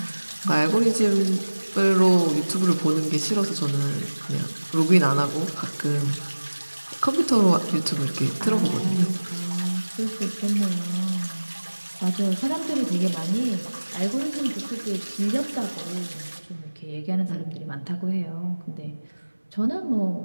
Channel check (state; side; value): inverted; both; correlation -1.00